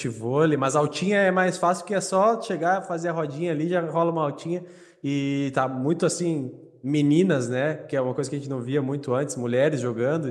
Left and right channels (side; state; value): both; identical; correlation 1.00